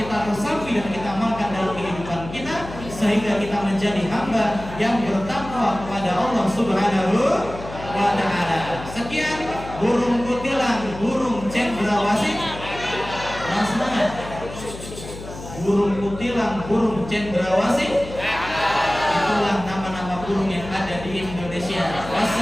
resapi dan kita amalkan dalam kehidupan kita sehingga kita menjadi hamba yang bertakwa kepada Allah Subhanahu wa ta'ala. Sekian, burung kutilang, burung cendrawasih. Semangat. Burung kutilang, burung cendrawasih. Itulah nama-nama burung yang ada di Indonesia.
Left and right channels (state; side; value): noise; left; hum, 12 dB below the sound